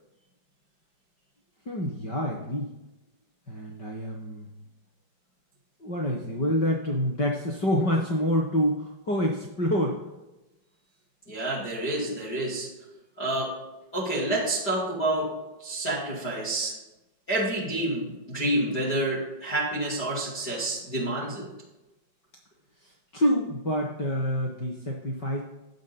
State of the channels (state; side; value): late; right; 5.0 ms